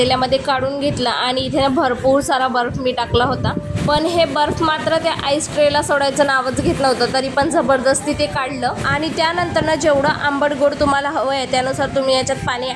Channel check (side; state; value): both; identical; correlation 1.00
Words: काढून घेतलं आणि इथे भरपूर सारा बर्फ मी टाकला होता. पण हे बर्फ मात्र त्या आईस ट्रेला सोडायचं नावच घेत नव्हतं. तरी पण जबरदस्ती ते काढलं आणि त्यानंतर ना जेवढं आंबट गोड तुम्हाला हवं आहे त्यानुसार तुम्ही याच्यात पाणी